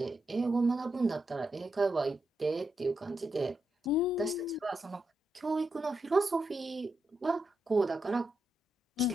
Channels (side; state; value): both; normal; correlation 0.84